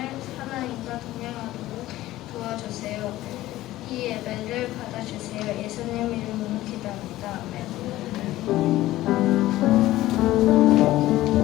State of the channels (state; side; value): quieter; right; 15.9 dB